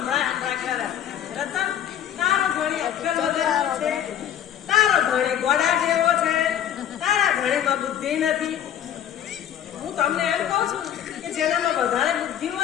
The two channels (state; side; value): quieter; right; 10.1 dB